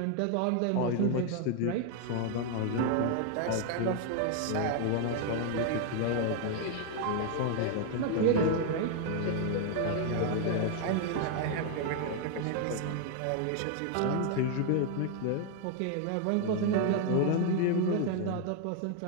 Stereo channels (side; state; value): both; different; correlation 0.00